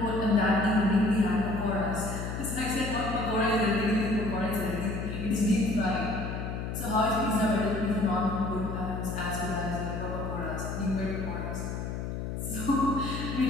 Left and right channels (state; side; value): noise; left; hum, 4 dB below the sound